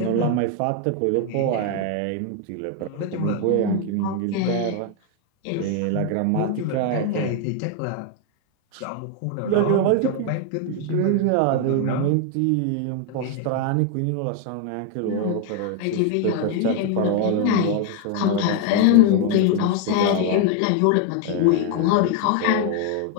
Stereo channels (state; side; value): different; both; correlation 0.00